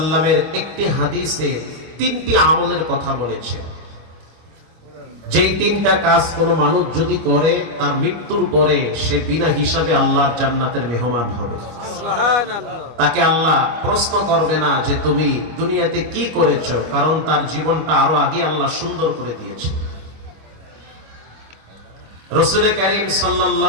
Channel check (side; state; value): left; late; 25 ms